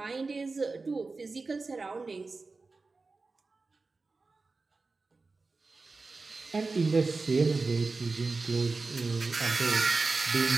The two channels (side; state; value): left; quieter; 3.9 dB